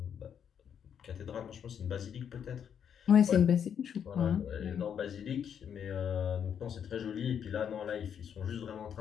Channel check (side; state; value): right; quieter; 8.2 dB